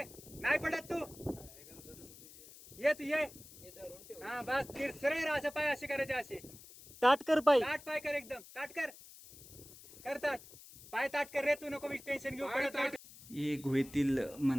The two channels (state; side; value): noise; left; hiss, 18 dB below the sound